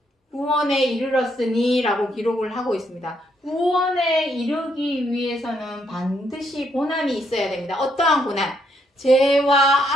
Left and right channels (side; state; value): both; normal; correlation 0.74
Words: 구원에 이르렀으니 라고 기록을 하고 있습니다. 구원에 이르기 위해서는 반드시 고난이 있어야 됩니다. 어떠한 고난? 죄와